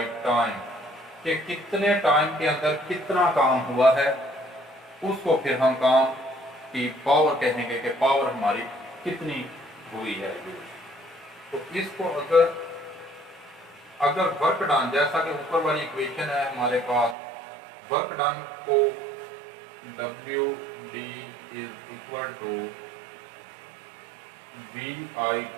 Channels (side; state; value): left; drops out; at 17.2 s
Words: time, कि कितने टाइम के अंदर कितना काम हुआ है, उसको फिर हम काम की पावर कहेंगे कि पावर हमारी कितनी हुई है। तो इसको अगर वर्क डन, जैसा कि ऊपर वाली इक्वेशन है हमारे पास, वर्क डन को W D is equal to V I